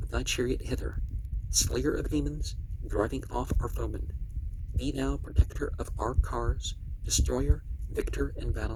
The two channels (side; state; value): both; identical; correlation 1.00